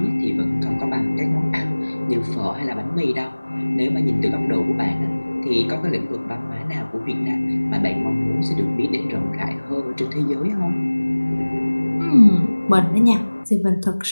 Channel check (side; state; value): both; inverted; correlation -1.00